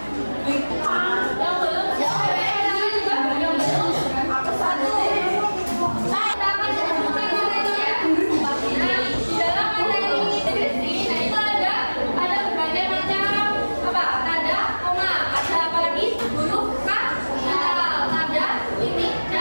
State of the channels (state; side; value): inverted; both; correlation -1.00